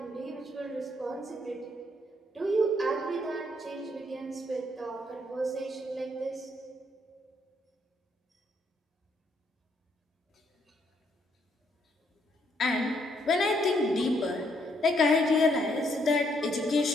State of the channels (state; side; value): normal; both; correlation 0.72